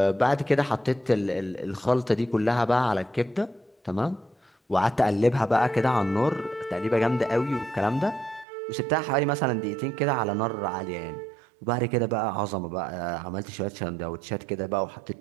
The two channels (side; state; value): left; drops out; at 8.5 s